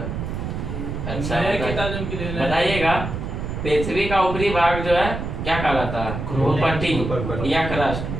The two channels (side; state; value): right; noise; rumble, 5 dB below the sound